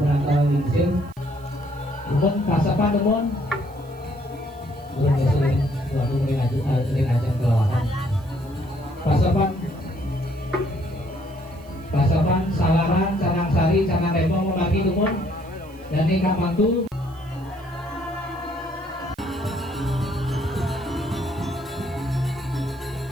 menantang lingsir. Teman pasapan teman. Belum sering, waktu sering ajang kelawakan. Pasapan, Salaran, Canang Sari, Canang Rembong membagi teman. Dan ini Kak Mantu.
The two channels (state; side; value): noise; right; hiss, 28 dB below the sound